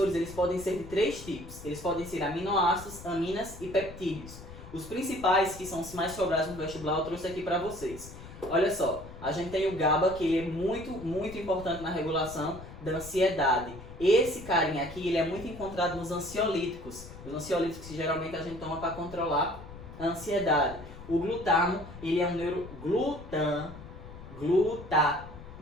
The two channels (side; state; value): left; noise; rumble, 15 dB below the sound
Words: eles podem ser de 3 tipos. Eles podem ser aminoácidos, aminas e peptídeos. Os principais, que são os mais sobrados no vestibular, eu trouxe aqui para vocês. Olha só, a gente tem o GABA, que ele é muito importante na regulação da ansiedade. Esse carinha aqui, ele é muito encontrado nos ansiolíticos. Os ansiolíticos que geralmente a gente toma para controlar a ansiedade. O glutamo, ele é um